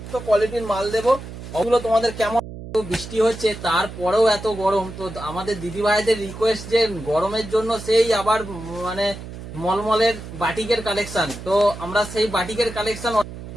তো কোয়ালিটির মাল দেবো। ওগুলো তোমাদের কেমন, বৃষ্টি হচ্ছে তারপরেও এত গরম, তো আমাদের দিদি ভাইদের রিকোয়েস্ট যে গরমের জন্য সেই আবার মানে মলমলের বাটিকের কালেকশন, তো আমরা সেই বাটিকের কালেকশন।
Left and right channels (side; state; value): right; noise; hum, 12 dB below the sound